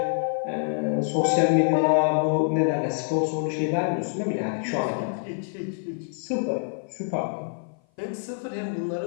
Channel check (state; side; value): silent; right; 56 dB below the other